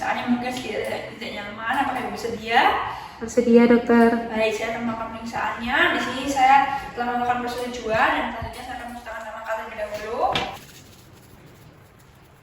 yang mungkin tidak nyaman. Apakah Ibu bersedia? Bersedia, dokter. Baik, saya akan melakukan pemeriksaannya. Di sini saya telah melakukan persetujuan dan selanjutnya saya akan menceritakan nama terlebih dahulu.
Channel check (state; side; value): identical; both; correlation 1.00